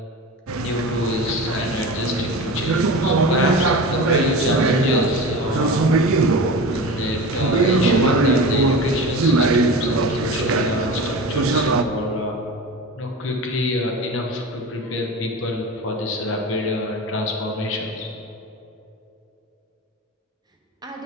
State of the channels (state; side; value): normal; both; correlation 0.31